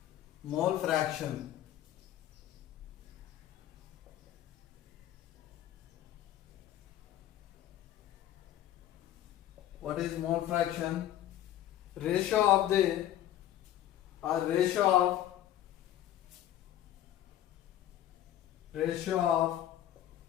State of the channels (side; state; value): right; quieter; 12.4 dB